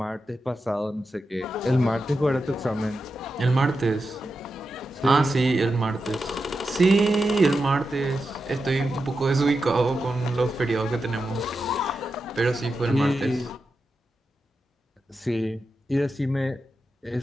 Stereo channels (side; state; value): both; normal; correlation 0.89